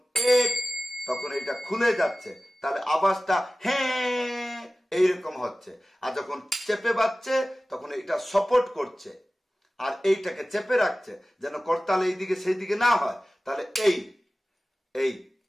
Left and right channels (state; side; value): normal; both; correlation 0.97